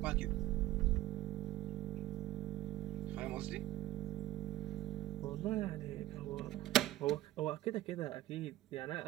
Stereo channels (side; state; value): left; quieter; 15.0 dB